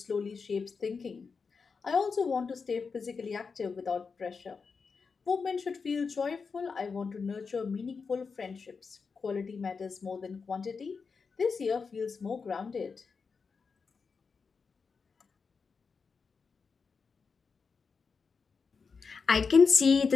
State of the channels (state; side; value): quieter; right; 5.2 dB